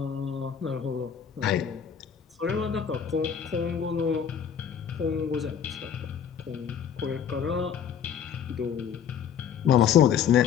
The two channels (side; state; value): right; quieter; 8.2 dB